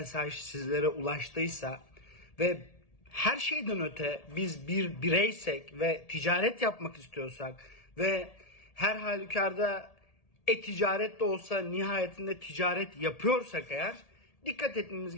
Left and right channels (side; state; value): right; late; 1.8 ms